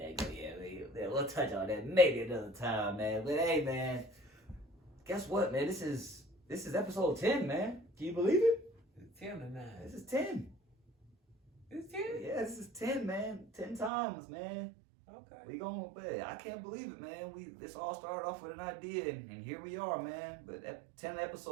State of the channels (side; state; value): left; drops out; at 13.9 s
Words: go. Yeah, we'll touch on that maybe another time, man. But hey, man, guess what, man? This is episode 10, man. Can you believe it? It's 10 to 9. This is 10. It's 10? Yeah, this is 10, man. 10 times, man. Okay. I can't believe it, man. This all started off with an idea, and here we are, man. But 10